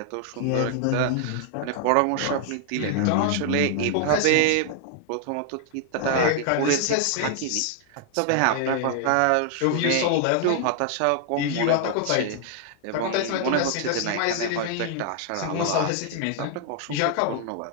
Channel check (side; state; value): both; different; correlation 0.00